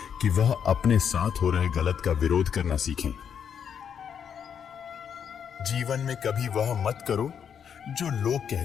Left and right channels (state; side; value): quieter; right; 7.8 dB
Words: कि वह अपने साथ हो रहे गलत का विरोध करना सीखें। जीवन में कभी वह मत करो जो लोग